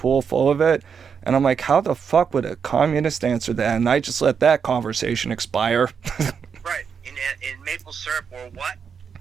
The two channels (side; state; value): left; quieter; 6.6 dB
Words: full of it? And I'm like, how the fuck would a communist answer that? And I just let that conversation expire. Right. In maple syrup or what?